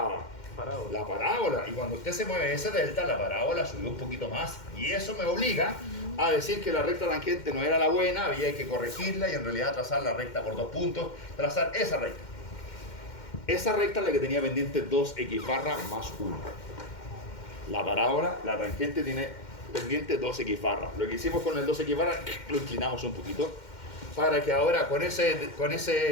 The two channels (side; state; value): right; late; 2.1 ms